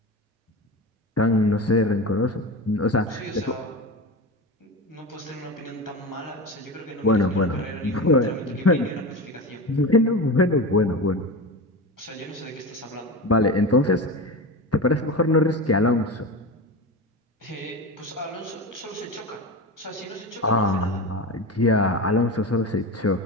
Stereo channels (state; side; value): normal; both; correlation 0.25